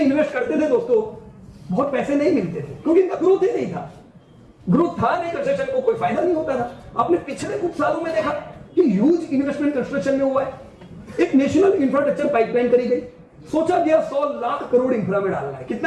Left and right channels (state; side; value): identical; both; correlation 1.00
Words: इन्वेस्ट करते थे दोस्तों, बहुत पैसे नहीं मिलते थे क्योंकि इनका ग्रोथ ही नहीं था। ग्रोथ था नहीं, कंस्ट्रक्शन को कोई फायदा नहीं होता था। आपने पिछले कुछ सालों में देखा कि ह्यूज इन्वेस्टमेंट कंस्ट्रक्शन में हुआ है। एक नेशनल इंफ्रास्ट्रक्चर पाइपलाइन करी गई, सोचा गया 100 लाख करोड़ इंफ्रा में डालना है।